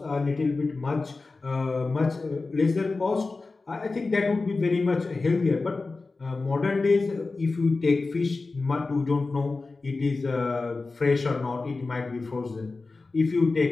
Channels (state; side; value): quieter; right; 3.7 dB